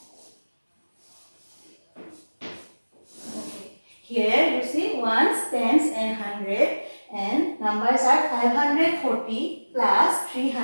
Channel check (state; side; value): inverted; both; correlation -1.00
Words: Here you see ones, tens and hundred, and numbers are 540 plus